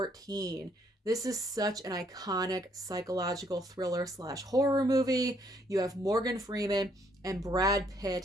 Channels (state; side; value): normal; both; correlation 0.68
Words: This is such an iconic psychological thriller / horror movie. You have Morgan Freeman and Brad